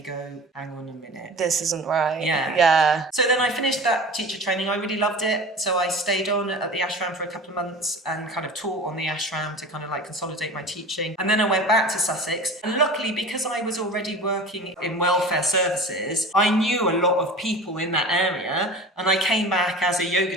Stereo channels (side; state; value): both; normal; correlation 0.36